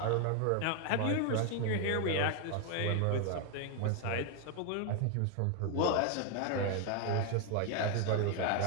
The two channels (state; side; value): different; both; correlation 0.01